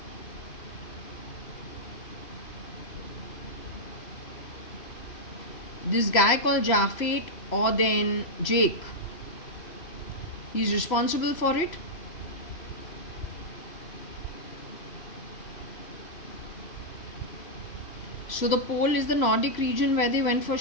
This guy called Jafet or then Jake, he's responsible for it. So the pole is the Nordic region where they went for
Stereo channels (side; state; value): right; late; 3.0 ms